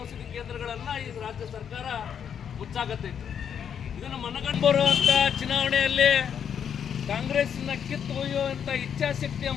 ಔಷಧಿ ಕೇಂದ್ರಗಳನ್ನ ಈ ರಾಜ್ಯ ಸರ್ಕಾರ ಮುಚ್ಚಾಕತ್ತೈತೆ. ಇದನ್ನು ಮನಗಂಡು ಬರುವಂತ ಚುನಾವಣೆಯಲ್ಲಿ ಕಾಂಗ್ರೆಸ್ನ ಕಿತ್ತು ಒಯ್ಯುವಂತ ಇಚ್ಛಾಶಕ್ತಿಯ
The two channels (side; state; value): right; quieter; 8.1 dB